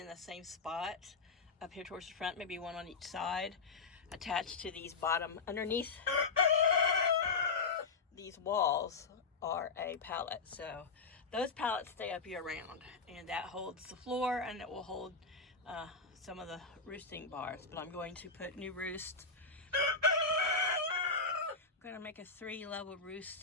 the same spot up here towards the front, maybe one on each side, attached to these bottom, underneath these walls are a pallet. So those pallets stay up year round, and that holds the floor, and it will hold some of the roosting bars. But I'm going to put new roost. I'm going to make a 3-level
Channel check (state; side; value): quieter; right; 4.4 dB